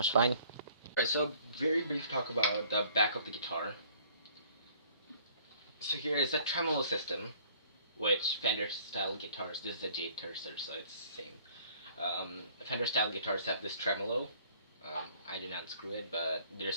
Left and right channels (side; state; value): both; inverted; correlation -0.56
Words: fine. Alright, so very brief talk about the back of the guitar. So here is the tremolo system, which Fender style guitars, this is a J tercer, so it's the same. Fender style guitars have this tremolo. I didn't unscrew it, but there's